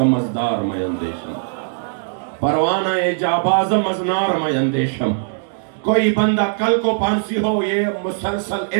مزدار میں اندیشم، پروانہ جاباز مزنار میں اندیشم۔ کوئی بندہ کل کو پانسی ہو، یہ مسلسل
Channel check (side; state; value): left; silent; digital silence